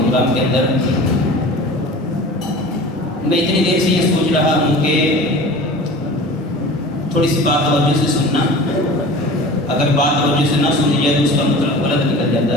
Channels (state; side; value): normal; both; correlation 0.38